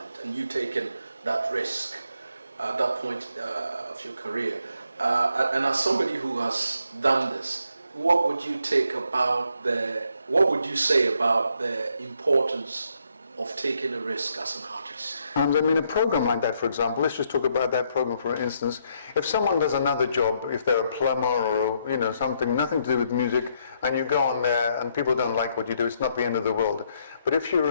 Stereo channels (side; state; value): both; inverted; correlation -0.74